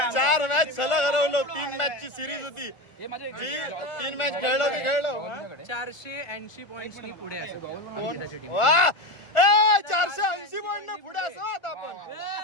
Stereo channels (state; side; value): late; right; 1.4 ms